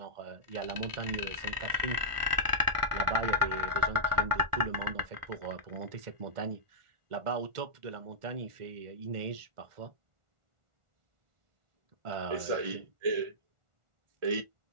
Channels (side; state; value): left; late; 1.4 ms